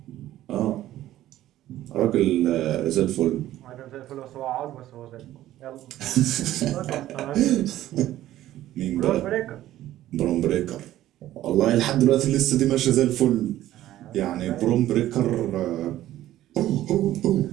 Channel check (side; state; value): left; quieter; 13.9 dB